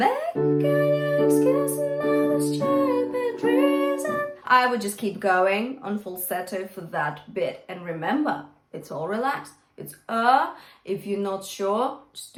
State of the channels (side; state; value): both; identical; correlation 1.00